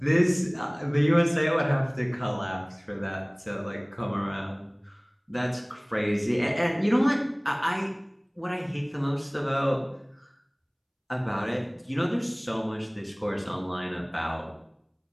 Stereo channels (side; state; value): both; identical; correlation 1.00